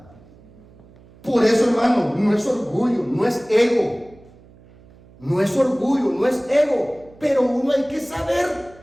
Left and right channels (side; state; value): right; noise; hum, 25 dB below the sound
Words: Por eso, hermano, no es orgullo, no es ego. No es orgullo, no es ego. Pero uno hay que saber